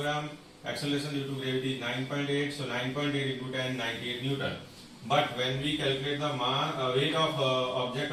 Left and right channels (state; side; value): identical; both; correlation 1.00